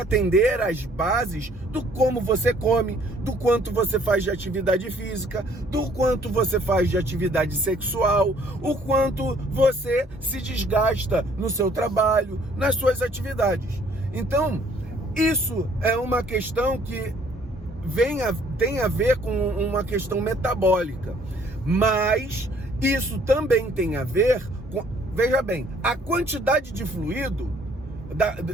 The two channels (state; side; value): normal; both; correlation 0.61